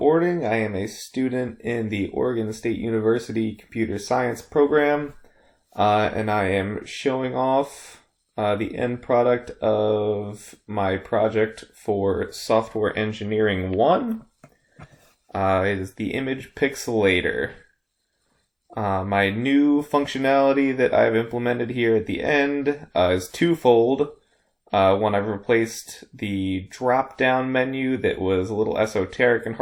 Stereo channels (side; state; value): both; identical; correlation 1.00